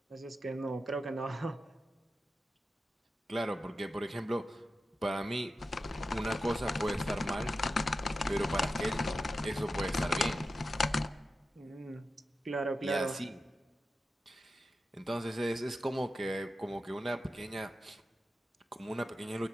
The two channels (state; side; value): normal; both; correlation 0.91